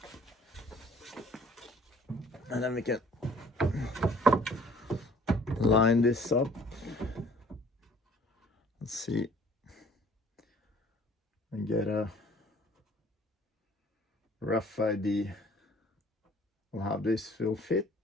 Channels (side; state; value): both; normal; correlation 0.55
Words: And then we can line this up. Let's see. And get a rough idea of how this will fit.